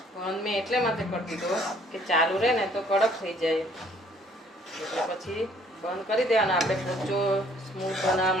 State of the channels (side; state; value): both; normal; correlation 0.60